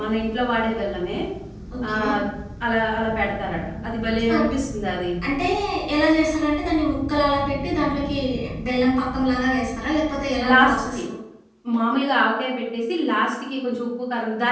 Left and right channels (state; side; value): identical; both; correlation 1.00